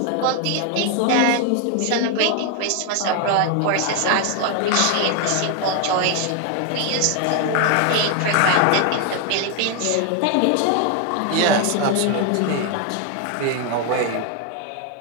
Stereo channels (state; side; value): different; both; correlation 0.01